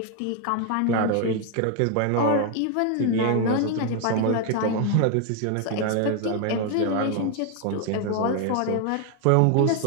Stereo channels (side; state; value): both; different; correlation 0.01